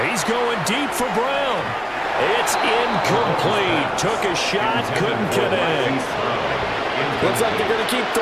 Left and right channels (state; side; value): identical; both; correlation 1.00